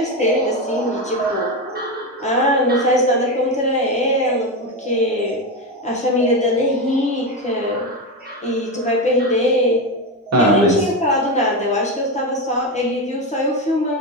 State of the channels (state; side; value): normal; both; correlation 0.14